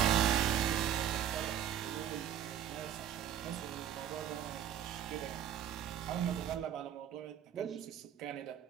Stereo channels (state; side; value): quieter; left; 10.0 dB